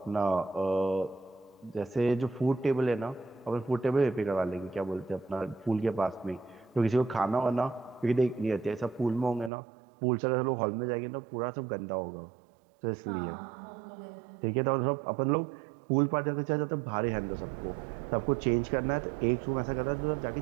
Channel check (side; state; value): left; drops out; at 9.5 s